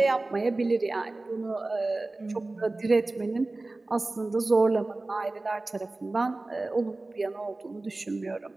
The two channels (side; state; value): left; quieter; 3.1 dB